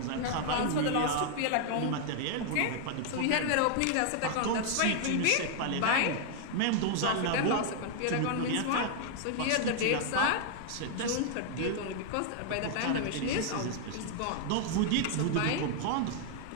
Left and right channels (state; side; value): different; both; correlation 0.00